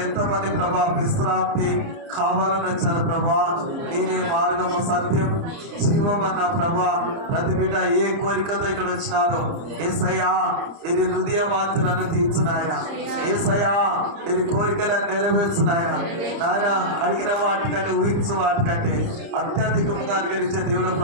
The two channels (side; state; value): left; late; 30 ms